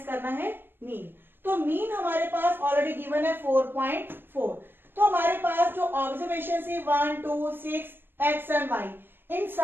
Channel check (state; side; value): late; left; 0.098 ms